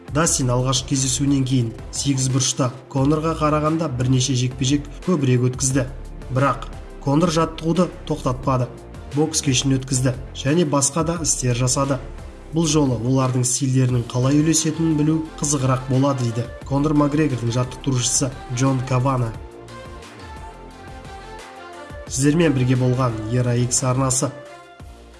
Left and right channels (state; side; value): identical; both; correlation 1.00